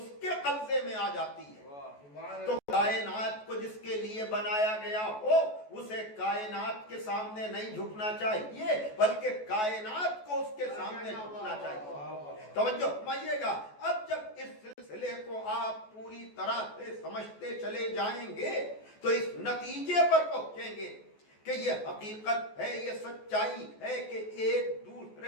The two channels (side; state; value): right; late; 14 ms